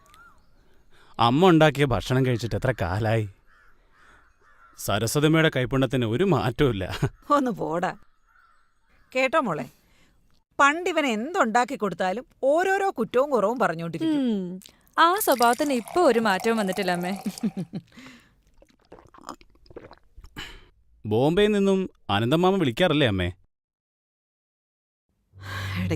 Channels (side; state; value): both; identical; correlation 1.00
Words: അമ്മ ഉണ്ടാക്കിയ ഭക്ഷണം കഴിച്ചിട്ട് എത്ര കാലായി. സരസ്വതമ്മയുടെ കൈപ്പുണ്യത്തിന് ഒരു മാറ്റവും ഇല്ല. ഒന്ന് പോടാ. കേട്ടോ മോളെ, പണ്ടിവൻ എന്തുണ്ടാക്കി കൊടുത്താലും ഓരോരോ കുറ്റവും കുറവും പറഞ്ഞോണ്ടിരിക്കും. ആ സ്വഭാവത്തിന് ഇപ്പൊ ഒരു മാറ്റവും വന്നിട്ടില്ല അമ്മേ. ബോംബെയിൽ നിന്നും അനന്തമാമ വിളിക്കാറില്ലേ അമ്മേ?